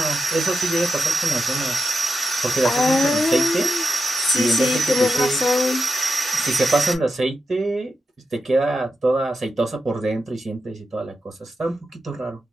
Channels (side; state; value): both; normal; correlation 0.88